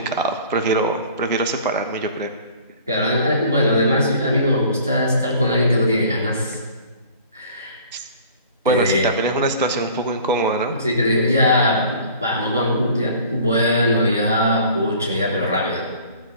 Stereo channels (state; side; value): inverted; both; correlation -0.48